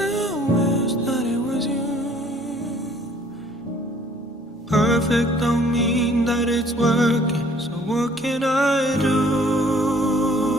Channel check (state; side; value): normal; both; correlation 0.57